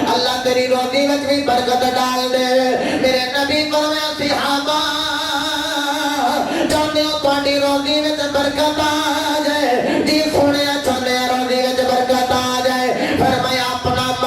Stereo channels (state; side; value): identical; both; correlation 1.00